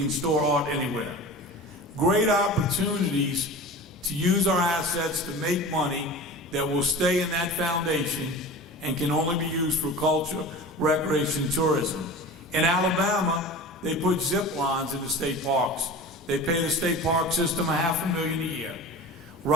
store art anywhere. Great opportunities to use our assets to make money that will stay in that foundation and can only be used for culture, recreation, and tourism. In Alabama, they put zip lines in the state parks. They pay the state park system $500,000 a year.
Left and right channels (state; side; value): normal; both; correlation 0.35